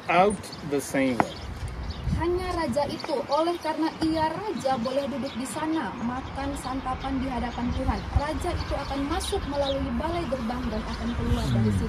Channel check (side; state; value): both; identical; correlation 1.00